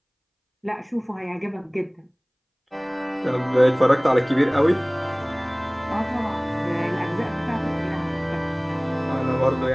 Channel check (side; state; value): both; identical; correlation 1.00